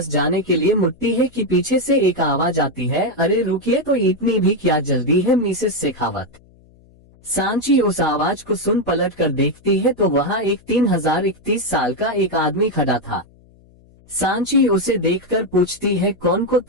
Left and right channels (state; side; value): noise; left; hum, 28 dB below the sound